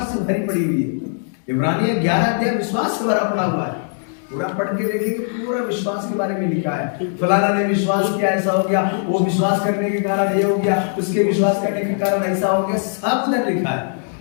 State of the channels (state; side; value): silent; right; digital silence